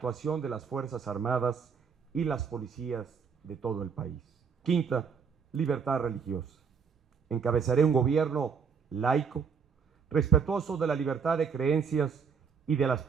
de las Fuerzas Armadas y las policías de todo el país. Quinta, libertad religiosa. Encabezaré un gobierno laico, respetuoso de la libertad de creencias y de las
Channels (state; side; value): quieter; left; 6.3 dB